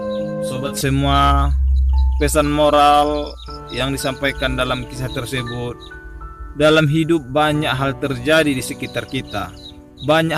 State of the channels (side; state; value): both; identical; correlation 1.00